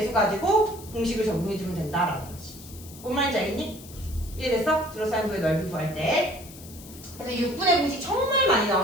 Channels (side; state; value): left; noise; hiss, 18 dB below the sound